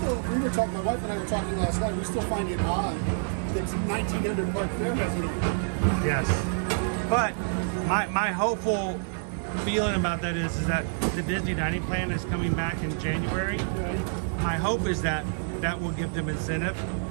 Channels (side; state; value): left; silent; digital silence